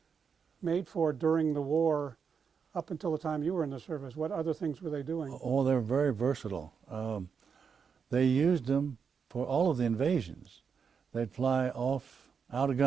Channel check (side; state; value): left; quieter; 6.3 dB